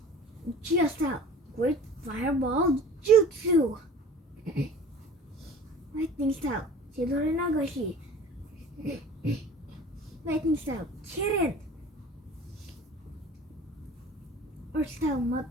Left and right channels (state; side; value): normal; both; correlation 0.43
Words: Chia style, great fireball jutsu. Lightning style, Chidori Nagashi. Lightning style, Kirin. Earth style, mud